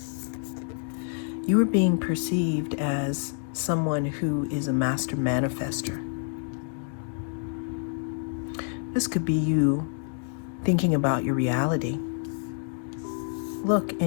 You are being perceived as someone who is a master manifester. This could be you thinking about your reality. Look,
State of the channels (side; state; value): right; silent; digital silence